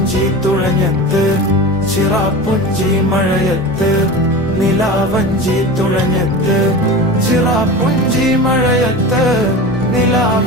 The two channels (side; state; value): both; normal; correlation 0.31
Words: തുഴഞ്ഞത്ത്, ചിറാപ്പുഞ്ചി മഴയത്ത് നിലാവഞ്ചി തുഴഞ്ഞത്ത്, ചിറാപ്പുഞ്ചി മഴയത്ത്